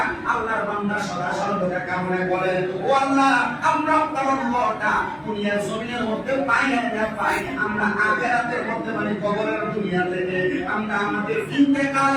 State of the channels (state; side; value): identical; both; correlation 1.00